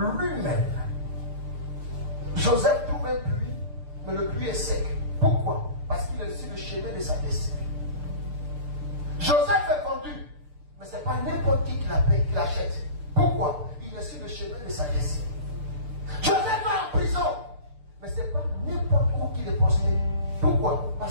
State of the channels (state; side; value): late; left; 6.7 ms